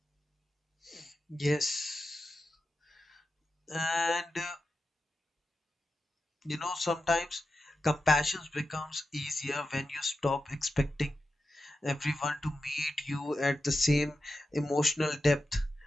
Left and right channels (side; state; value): both; normal; correlation 0.90